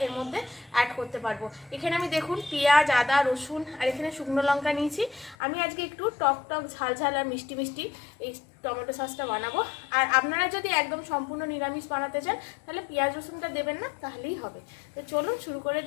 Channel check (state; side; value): drops out; right; at 5.4 s